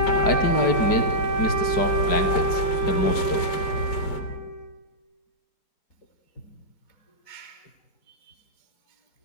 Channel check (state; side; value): late; right; 5.0 ms